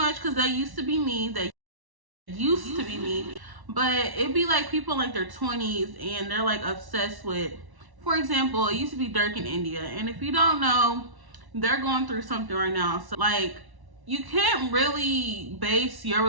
because that used to be me, but it'd be like people in like their 20s and they're like obsessed with, for example, it used to be Dirk in India, and if you don't know, they're going through something right now. So like, you can't really base your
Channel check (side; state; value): left; late; 1.1 ms